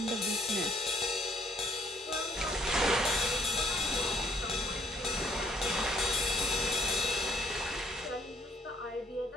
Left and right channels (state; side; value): normal; both; correlation 0.64